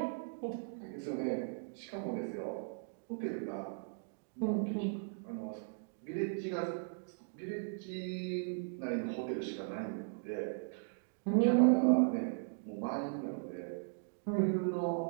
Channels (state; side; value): silent; left; digital silence